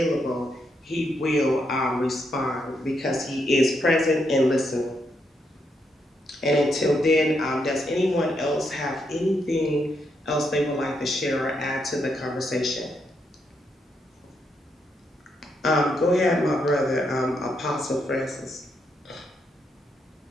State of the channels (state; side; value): normal; both; correlation 0.79